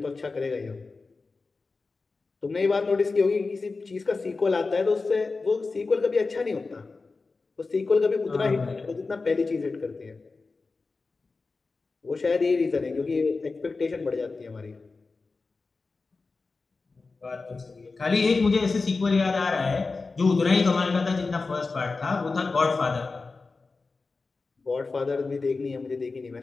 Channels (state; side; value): quieter; right; 4.0 dB